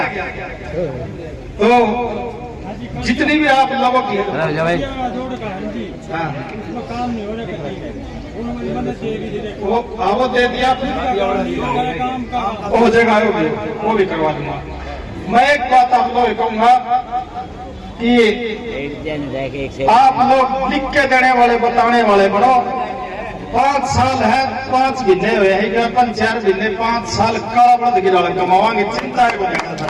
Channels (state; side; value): identical; both; correlation 1.00